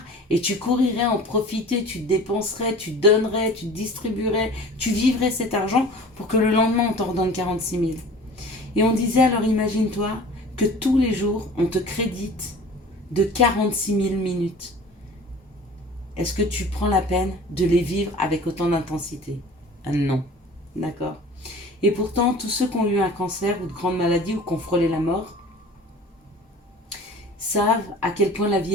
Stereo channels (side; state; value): both; normal; correlation 0.43